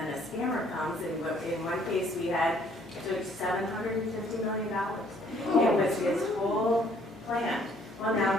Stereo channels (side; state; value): left; noise; hum, 28 dB below the sound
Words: a scammer comes, and in one case we had took $750 million. It was his whole plan. Well,